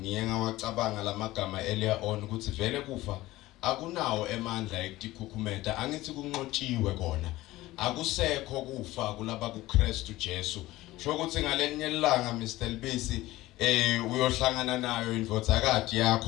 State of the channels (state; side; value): quieter; right; 17.5 dB